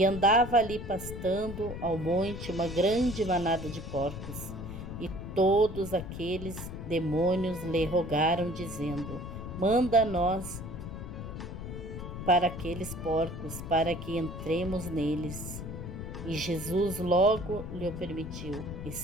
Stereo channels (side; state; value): left; noise; rumble, 8 dB below the sound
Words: andava ali pastando ao monte uma grande manada de porcos. E todos aqueles demônios lhe rogaram, dizendo: Manda-nos para aqueles porcos, para que entremos neles. E Jesus logo lhe permitiu. E